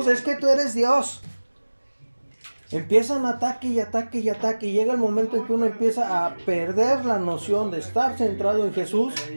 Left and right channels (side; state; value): both; inverted; correlation -1.00